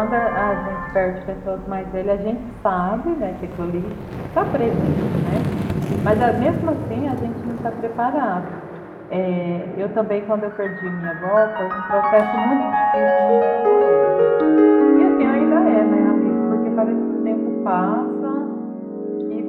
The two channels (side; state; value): both; identical; correlation 1.00